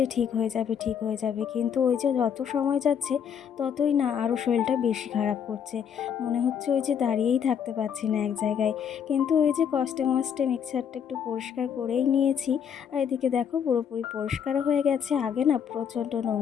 ঠিক হয়ে যাবে, ঠিক হয়ে যাবে, কিন্তু ওই যে যত সময় যাচ্ছে ততই না আরও শরীরটা বেশি খারাপ করছে। মনে হচ্ছে ওই যে দাঁড়িয়েই থাকতে পারছি না এক জায়গায়। কিন্তু ওই যে কষ্টে মষ্টে মিক্সারটা একটু পরিষ্কার করেই নিয়েছি। আর এদিকে দেখো পুরোপুরি পরিষ্কারও হয়ে গেছে, আগে না প্রচণ্ড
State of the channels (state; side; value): quieter; right; 7.9 dB